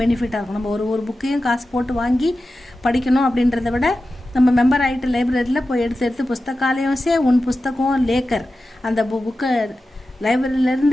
பெனிஃபிட்டாக இருக்கும். நம்ம ஒரு புக்கையும் காசு போட்டு வாங்கி படிக்கணும் அப்படின்றத விட நம்ம மெம்பர் ஆகிட்டு லைப்ரரியில் போய் எடுத்து புஸ்தகாலயம் சே உன் புஸ்தகம் லேக்கர் அந்த புக்கை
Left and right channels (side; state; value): both; normal; correlation 0.93